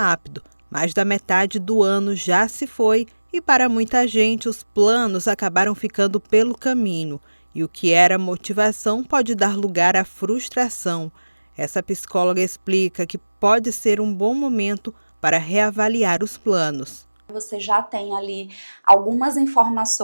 Mais da metade do ano já se foi e para muita gente os planos acabaram ficando pelo caminho. E o que era motivação pode dar lugar à frustração. Essa psicóloga explica que pode ser um bom momento para reavaliar os planos. Você já tem ali algumas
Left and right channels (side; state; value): both; inverted; correlation -1.00